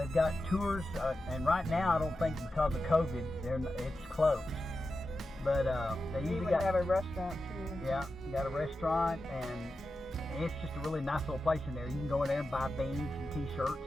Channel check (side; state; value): both; normal; correlation 0.91